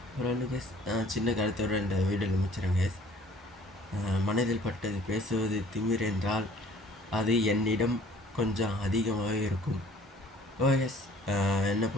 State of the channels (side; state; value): both; normal; correlation 0.54